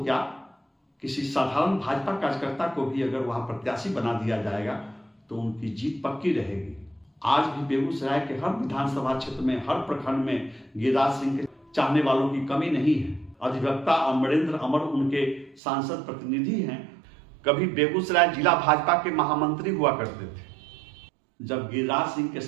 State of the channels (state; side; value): drops out; left; at 15.6 s